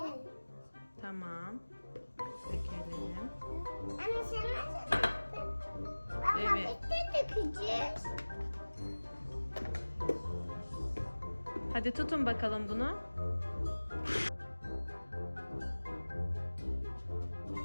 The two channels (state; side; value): inverted; both; correlation -1.00